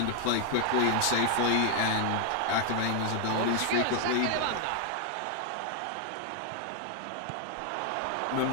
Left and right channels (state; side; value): different; both; correlation 0.00